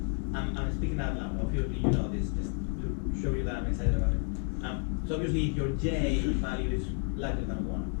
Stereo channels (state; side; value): quieter; right; 38.2 dB